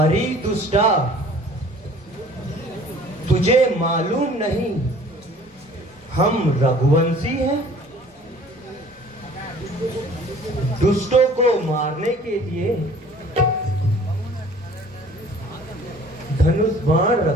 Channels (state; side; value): normal; both; correlation 0.50